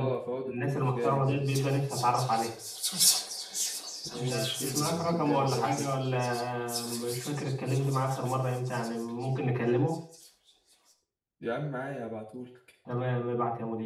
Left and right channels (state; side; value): identical; both; correlation 1.00